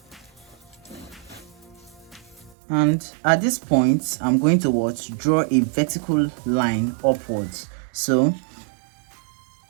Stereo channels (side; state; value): left; drops out; at 2.6 s